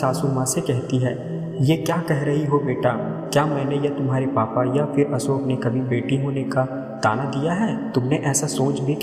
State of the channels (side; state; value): both; identical; correlation 1.00